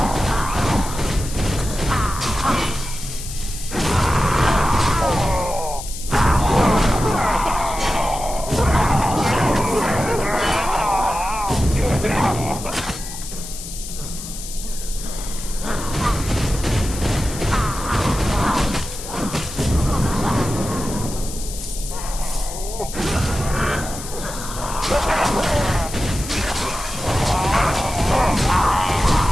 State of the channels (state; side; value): noise; left; hiss, 10 dB below the sound